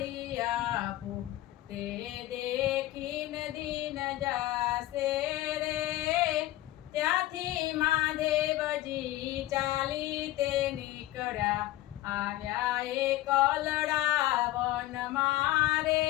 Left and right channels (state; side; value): quieter; right; 15.9 dB